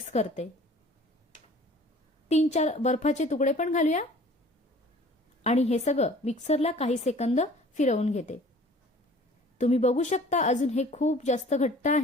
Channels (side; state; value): both; normal; correlation 0.49